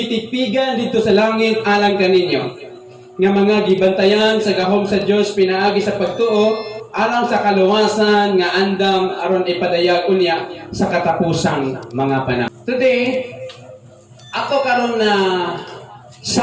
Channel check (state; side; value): identical; both; correlation 1.00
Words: dito sa langit alang kaninyo. Nga mga gibantayan sa gahom sa Dios pinaagi sa pagtuo alang sa kaluwasan nga andam aron ipadayag unya sa katapusang mga panahon. Today, ato karon na